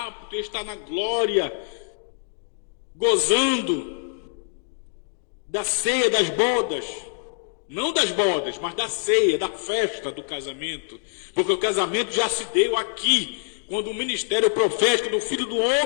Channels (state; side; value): silent; right; digital silence